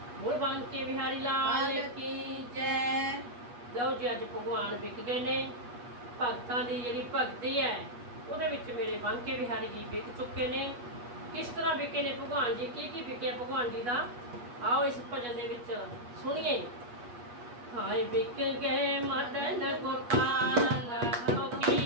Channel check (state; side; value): late; left; 8.3 ms